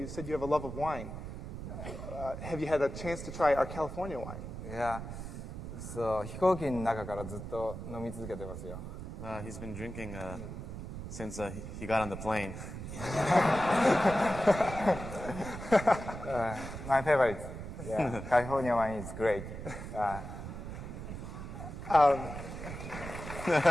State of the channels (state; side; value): noise; right; rumble, 8 dB below the sound